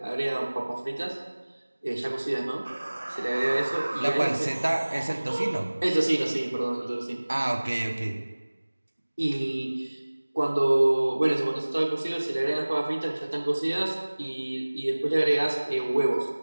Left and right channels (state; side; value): inverted; both; correlation -1.00